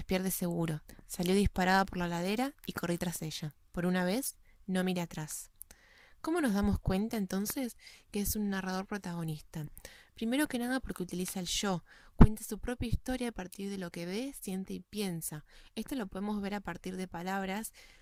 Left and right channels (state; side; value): identical; both; correlation 1.00